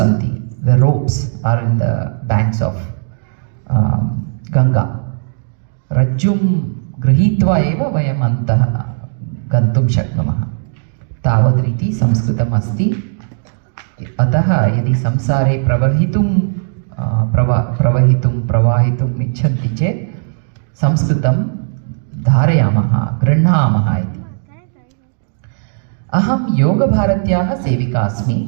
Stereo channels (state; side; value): silent; left; digital silence